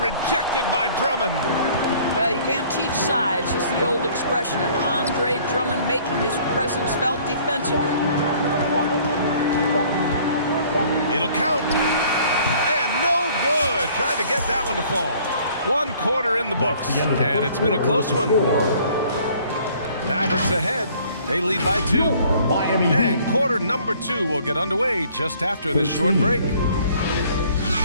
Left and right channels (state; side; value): inverted; both; correlation -0.56